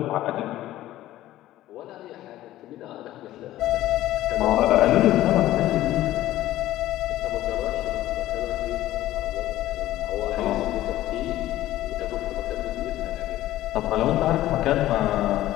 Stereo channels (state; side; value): quieter; right; 14.7 dB